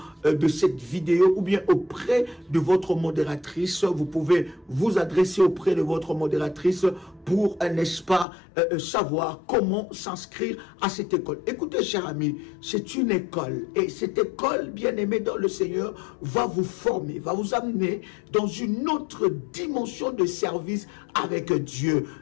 de cette vidéo ou bien auprès de votre modératrice. Vous pouvez vous adresser auprès de votre modératrice pour, n'est-ce pas, savoir comment s'inscrire à cette école. Écoutez, chers amis, c'est une école. Et cette école, bien-aimée dans le Seigneur, va vous former, va vous amener dans une autre dimension de service avec Dieu.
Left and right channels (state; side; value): drops out; right; at 8.2 s